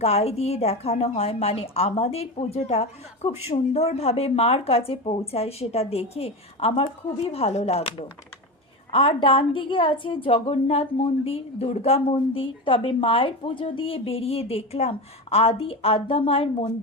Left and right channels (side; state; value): both; normal; correlation 0.22